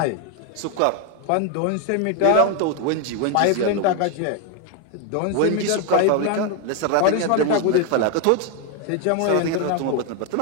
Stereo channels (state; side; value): different; both; correlation 0.01